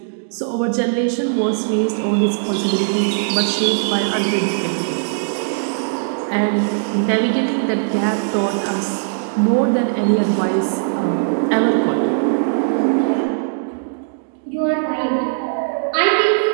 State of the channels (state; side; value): silent; left; digital silence